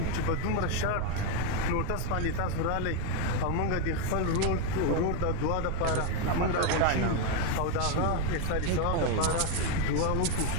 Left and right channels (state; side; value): different; both; correlation 0.01